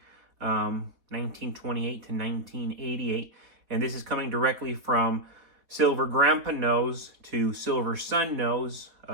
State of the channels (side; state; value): left; late; 4.4 ms